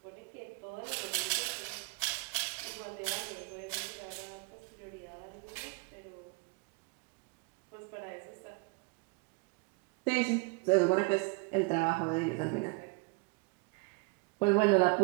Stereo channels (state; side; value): quieter; left; 30.2 dB